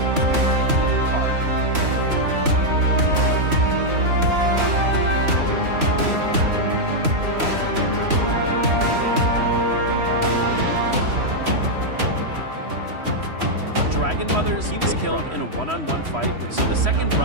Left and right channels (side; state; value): left; late; 3.1 ms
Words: Dragon Mothers, he was killed in a one-on-one fight with, so the second